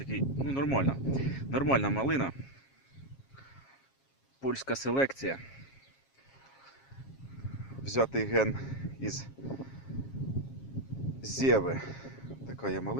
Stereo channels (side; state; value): right; late; 7.4 ms